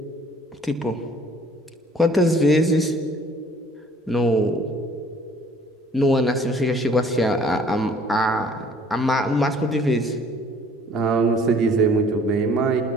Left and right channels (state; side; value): normal; both; correlation 0.56